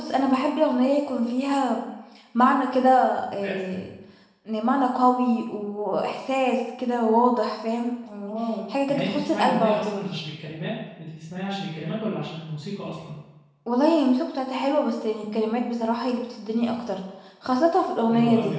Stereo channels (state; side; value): identical; both; correlation 1.00